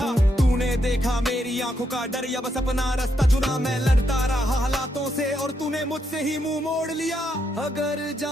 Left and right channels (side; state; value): both; normal; correlation 0.79